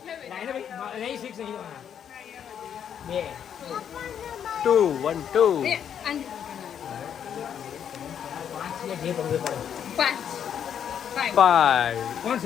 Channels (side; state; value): right; quieter; 8.7 dB